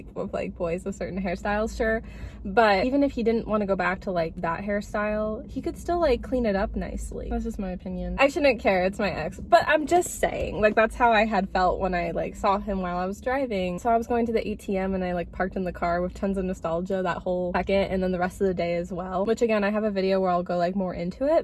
of like boys with certain hairstyles, sure, but even if he didn't want to go back to like that hairstyle, he could still like clean it up nicely. That's just my opinion. I shouldn't care, it's my ex, but I'm just saying, like that's how I had felt when I like saw him while I was driving. So I was going to the ATM and I like parked in the car with tons of nostalgia that whole second, and then the rest of the day as well, which again I have a video where I'll go like more into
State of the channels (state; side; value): identical; both; correlation 1.00